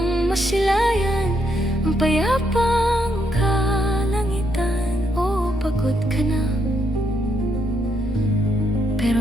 masilayan ang payapang kalangitan. O pagod ka na,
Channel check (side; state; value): both; normal; correlation 0.77